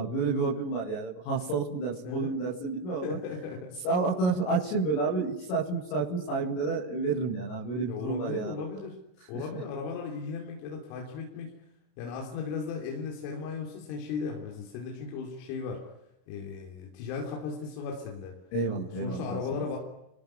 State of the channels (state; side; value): late; right; 33 ms